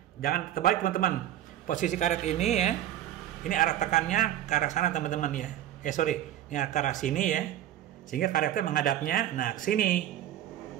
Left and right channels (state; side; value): quieter; left; 12.0 dB